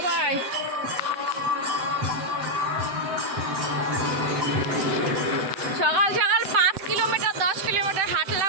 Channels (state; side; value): late; left; 7.8 ms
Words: সকাল সকাল 5 কিলোমিটার 10 কিলোমিটার